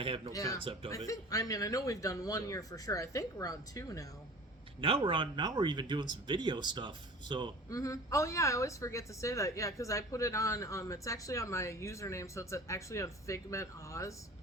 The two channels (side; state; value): both; normal; correlation 0.41